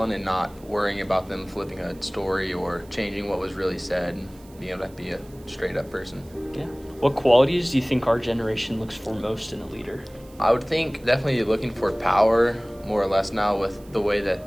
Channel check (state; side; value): noise; right; hiss, 26 dB below the sound